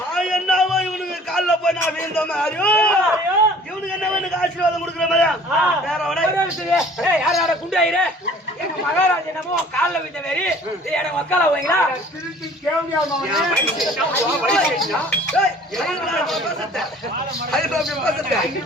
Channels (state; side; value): normal; both; correlation 0.50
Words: என்னவோ இவனுக்கு கால்ல போய் நான் வீழ்ந்த மாதிரியோ இவனுக்கு என்ன எனக்கு ஆசீர்வாதம் கொடுக்குற மாதிரியா வேற ஏய் யார் யார குண்டு ஆயிரே எங்க மகாராஜா என்னமோ கால்ல விட்ட மாதிரி எனக்கு வக்கால போவீங்களா? திருப்பி கேள்வியா